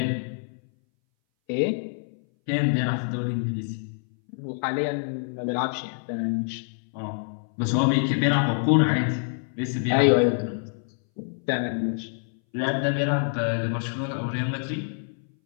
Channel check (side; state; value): right; silent; 60 dB below the other